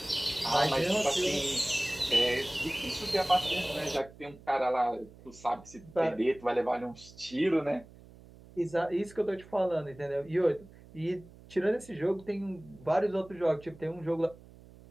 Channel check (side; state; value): right; noise; hum, 21 dB below the sound